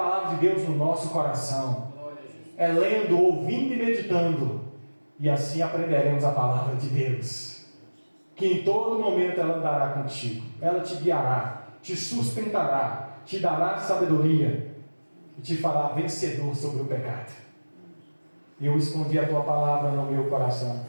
de Deus no nosso coração. É lendo, ouvindo e meditando. E assim aprenderemos a palavra de Deus. Que em todo momento ela andará contigo. Ela te guiará, te sustentará, te dará sabedoria e te fará vencedor sobre o pecado. Eu escondi a tua palavra no meu coração,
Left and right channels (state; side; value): inverted; both; correlation -1.00